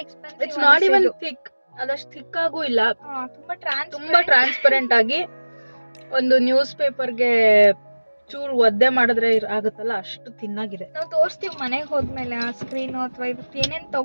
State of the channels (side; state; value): both; inverted; correlation -1.00